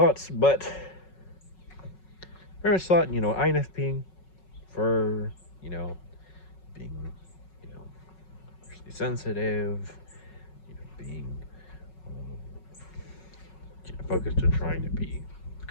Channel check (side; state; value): right; late; 5.4 ms